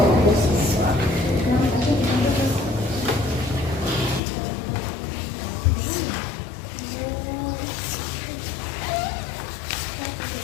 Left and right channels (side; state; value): right; drops out; at 4.2 s